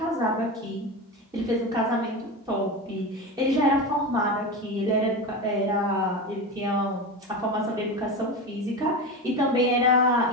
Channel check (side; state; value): both; normal; correlation 0.22